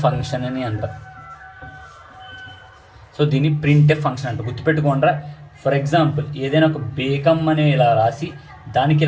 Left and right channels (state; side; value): identical; both; correlation 1.00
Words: అని అంటారు. సో దీన్ని ప్రింట్ ఎఫ్ ఫంక్షన్ అంటారు. గుర్తుపెట్టుకోండి. ఫర్ ఎగ్జాంపుల్ ఏదైనా ఒక బేకమ్ అని ఇలా రాసి దానికి